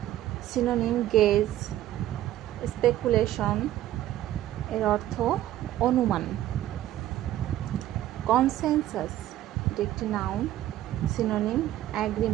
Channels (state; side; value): quieter; left; 13.6 dB